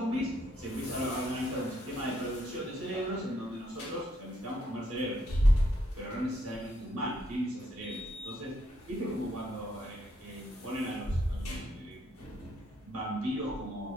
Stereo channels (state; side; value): normal; both; correlation 0.73